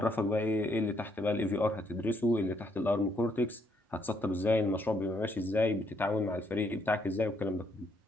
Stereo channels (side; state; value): both; normal; correlation 0.71